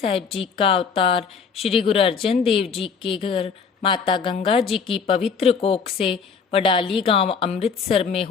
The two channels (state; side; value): quieter; right; 5.9 dB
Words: जी का अवतार श्री गुरु अर्जन देव जी के घर माता गंगा जी की पवित्र कोख से वडाली गांव अमृतसर में